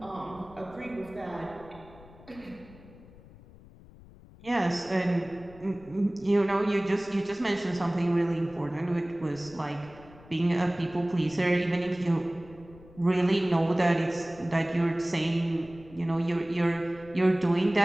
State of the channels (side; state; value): left; noise; rumble, 21 dB below the sound